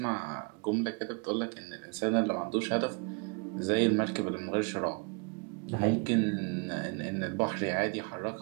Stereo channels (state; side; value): quieter; left; 33.3 dB